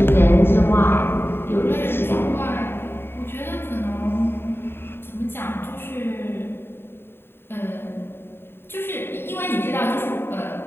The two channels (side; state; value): right; late; 0.11 ms